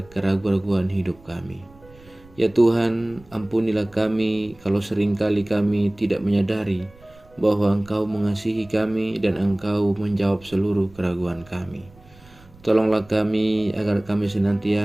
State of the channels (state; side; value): noise; right; rumble, 25 dB below the sound